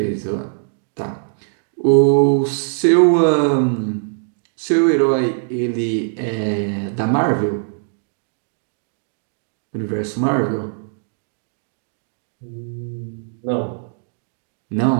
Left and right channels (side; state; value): left; silent; digital silence